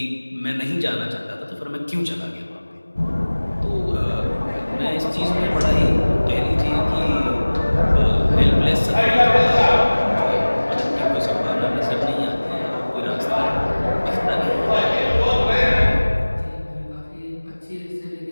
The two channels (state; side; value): inverted; both; correlation -1.00